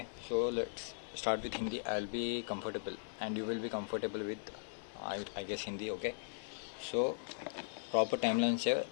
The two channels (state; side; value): silent; right; 52 dB below the other